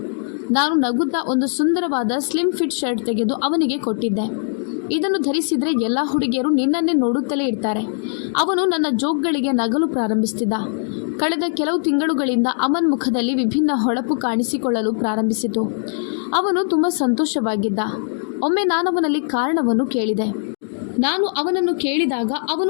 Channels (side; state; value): right; silent; digital silence